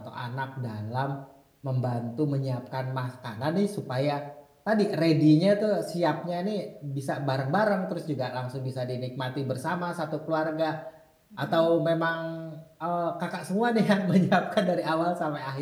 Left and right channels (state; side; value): identical; both; correlation 1.00